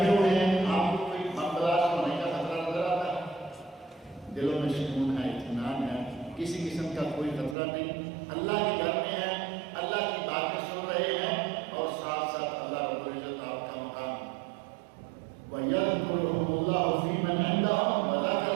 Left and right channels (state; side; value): drops out; left; at 7.6 s